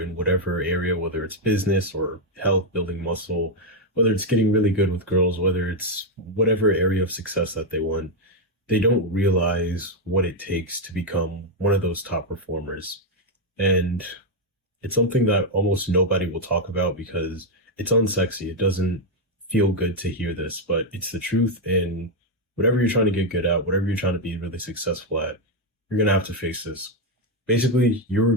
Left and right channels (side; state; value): both; normal; correlation 0.02